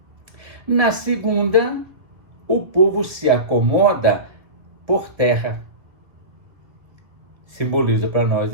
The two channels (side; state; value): left; late; 1.8 ms